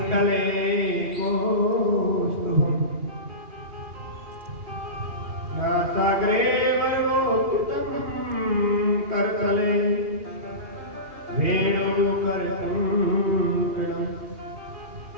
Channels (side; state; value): left; late; 2.8 ms